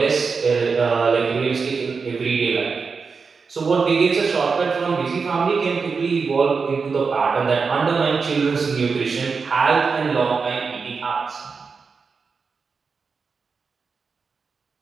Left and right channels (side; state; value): left; quieter; 5.0 dB